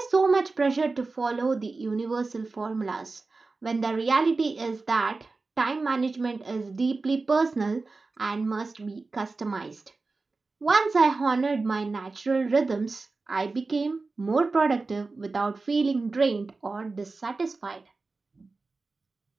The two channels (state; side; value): quieter; left; 3.8 dB